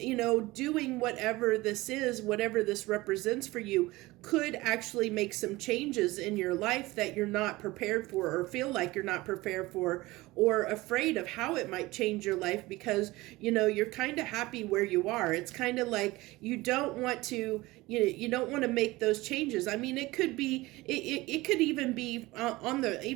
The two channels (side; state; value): left; quieter; 20.1 dB